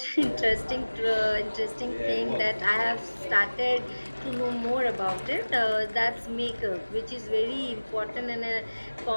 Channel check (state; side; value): inverted; both; correlation -1.00